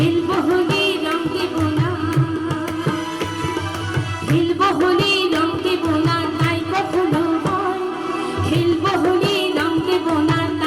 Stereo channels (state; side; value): noise; right; rumble, 30 dB below the sound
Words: হোলি রং দেব না, খেলবো হোলি রং দেব না তাই কখনো হয়। খেলবো হোলি রং দেব না